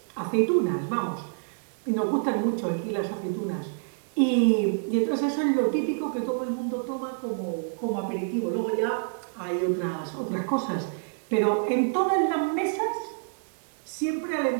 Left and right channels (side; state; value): left; silent; 60 dB below the other